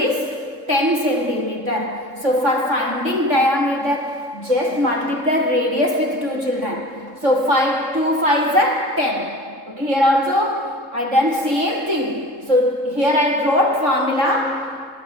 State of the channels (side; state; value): left; late; 3.7 ms